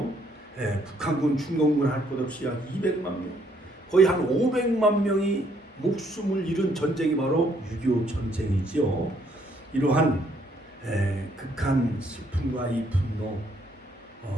북한군, 중공군 할 것 없이 약 200만 명, 거의 한 500만 명이 목숨을 잃은 전쟁이 바로 6.25 전쟁이지요. 이러한 극한 슬픔과 이 분노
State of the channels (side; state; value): both; normal; correlation 0.69